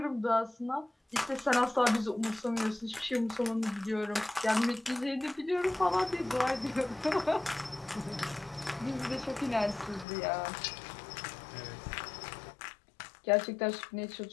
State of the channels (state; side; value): drops out; right; at 10.1 s